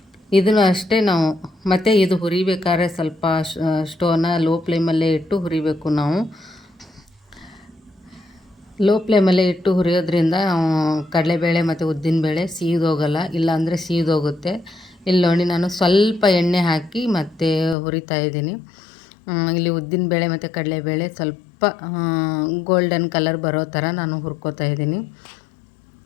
ಇದನ್ನು ಅಷ್ಟೇ ನಾವು. ಮತ್ತು ಇದು ಹುರಿಬೇಕಾದ್ರೆ ಸ್ವಲ್ಪ ಸ್ಟೋವ್ನ ಲೋ ಫ್ಲೇಮಲ್ಲೇ ಇಟ್ಟು ಹುರಿಬೇಕು ನಾವು. ಲೋ ಫ್ಲೇಮಲ್ಲೇ ಇಟ್ಟು ಹುರಿಯೋದ್ರಿಂದ ಕಡಲೆಬೇಳೆ ಮತ್ತು ಉದ್ದಿನಬೇಳೆ ಸೀದೋಗಲ್ಲ, ಇಲ್ಲಾಂದರೆ ಸೀದೋಗುತ್ತೆ. ಇಲ್ಲಿ ನೋಡಿ ನಾನು ಸ್ವಲ್ಪ ಎಣ್ಣೆ ಹಾಕಿ ಮತ್ತು ಹುರಿತಾ ಇದ್ದೀನಿ. ಇಲ್ಲಿ ಉದ್ದಿನಬೇಳೆ ಮತ್ತು ಕಡಲೆಬೇಳೆ ಸ್ವಲ್ಪ ಗೋಲ್ಡನ್ ಕಲರ್ ಬರೋ ಥರ ನಾನು ಹುರ್ಕೋತಾ ಇದ್ದೀನಿ.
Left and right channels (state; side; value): drops out; right; at 17.8 s